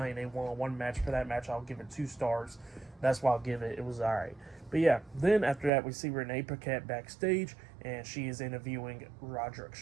in a 1-on-1 match. For that match, I'll give it 2 stars. That's why I'll give it. It was alright. But yeah, then after that, we see Renee Paquette backstage, and she is interviewing Roderick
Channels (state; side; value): drops out; left; at 5.7 s